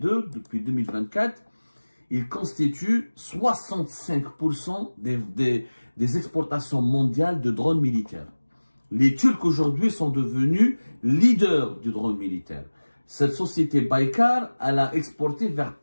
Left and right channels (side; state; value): both; inverted; correlation -1.00